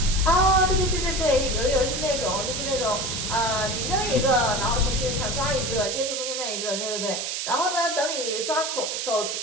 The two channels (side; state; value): right; noise; hiss, 3 dB below the sound